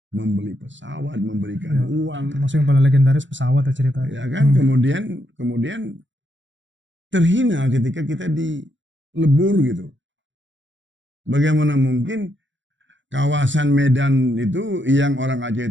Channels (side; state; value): left; late; 0.54 ms